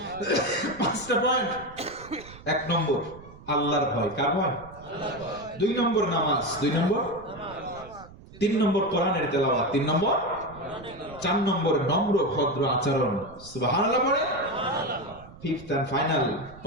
5টা পয়েন্ট। 1 নম্বর আল্লাহর ভয়। কার ভয়? 2 নম্বর নামাজ। 2 নম্বর 3 নম্বর কোরআনের তেলাওয়াত। 3 নম্বর 4 নম্বর নম্র ভদ্র আচরণ। সুবহানাল্লাহ পড়ে। 5th and final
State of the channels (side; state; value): right; noise; rumble, 19 dB below the sound